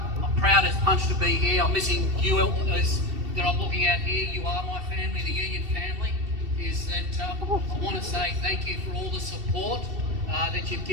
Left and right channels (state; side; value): late; left; 2.7 ms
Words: I'm proud as punch to be here. I'm missing you as that I'm looking at here. You are my family, the union family. Is that I want to say thank you for all the support that you've